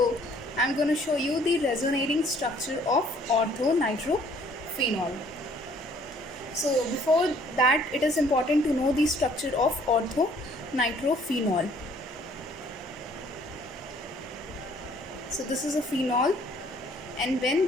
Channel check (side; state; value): both; normal; correlation 0.60